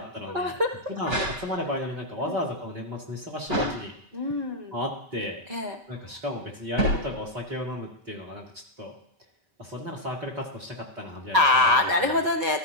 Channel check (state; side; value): late; left; 5.2 ms